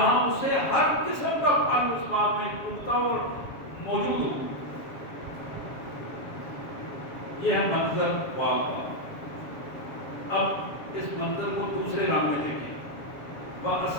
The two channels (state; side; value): late; right; 7.2 ms